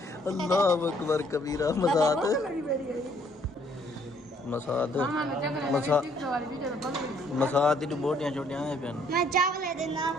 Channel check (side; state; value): both; normal; correlation 0.65